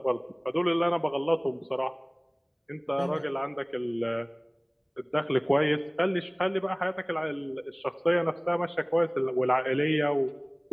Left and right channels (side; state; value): both; identical; correlation 1.00